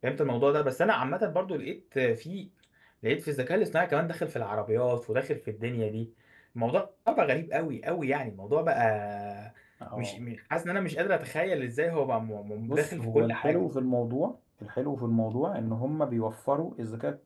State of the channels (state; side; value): identical; both; correlation 1.00